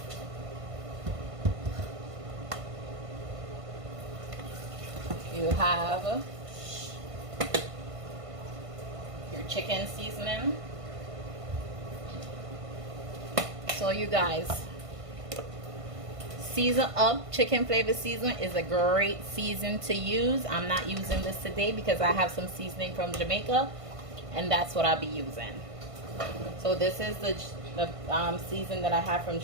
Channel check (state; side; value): late; left; 1.5 ms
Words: You have your chicken seasoning. So you guys, season up. Chicken flavor seasoning is a great season to use. I'm not using this today because I have some seasoning from Jamaica, and that's what I'll be using. So this is the season that I have from